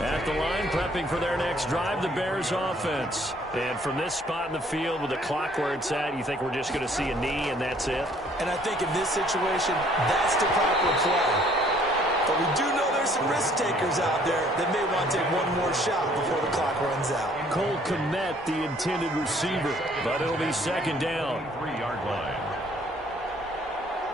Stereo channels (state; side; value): normal; both; correlation 0.60